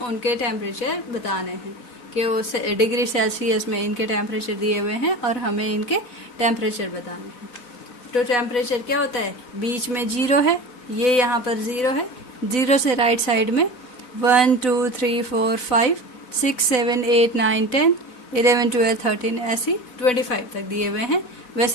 टेम्परेचर बताने हैं कि वो डिग्री सेल्सियस में इनके टेम्परेचर दिए हुए हैं और हमें इनके टेम्परेचर बताने हैं। तो टेम्परेचर क्या होता है, बीच में 0 है, ये यहाँ पर 0 है। 0 से राइट साइड में 1 2 3 4 5 6 7 8 9 10 11 12 13 ऐसी 25 तक दिए हुए हैं।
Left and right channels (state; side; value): late; right; 4.0 ms